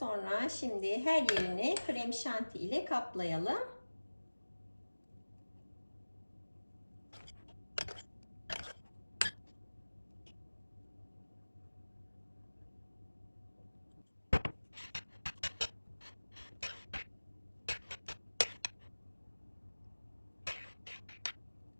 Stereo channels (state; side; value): inverted; both; correlation -1.00